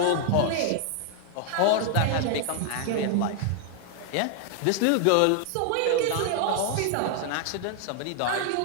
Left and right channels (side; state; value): both; different; correlation 0.00